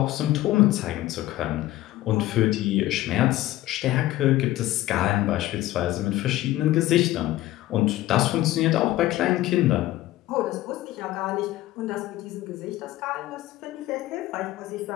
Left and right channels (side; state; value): right; quieter; 15.8 dB